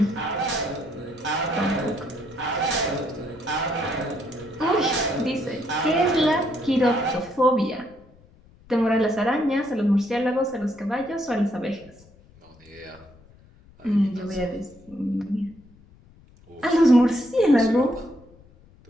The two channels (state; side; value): noise; left; rumble, 26 dB below the sound